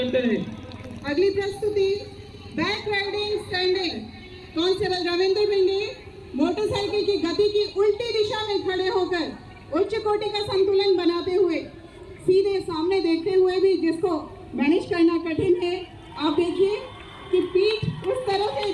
रहे। अगली प्रस्तुति back riding standing. Constable Ravindra भिंडी मोटरसाइकिल की गति की उल्टी दिशा में खड़े होकर उच्च कोटि का संतुलन बनाते हुए, सीधे सामने देखते हुए भी जिसको मैनेज करना कठिन है। आप देखिए कि पीठ उस तरफ है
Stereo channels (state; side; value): identical; both; correlation 1.00